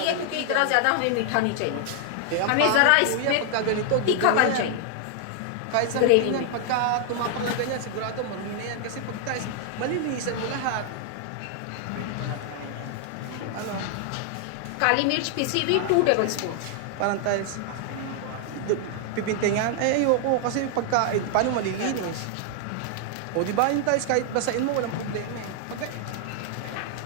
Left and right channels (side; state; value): both; different; correlation 0.00